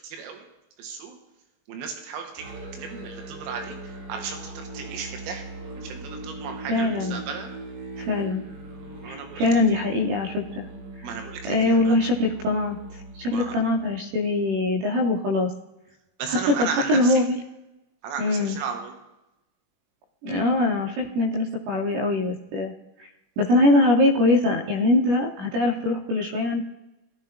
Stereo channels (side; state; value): left; late; 21 ms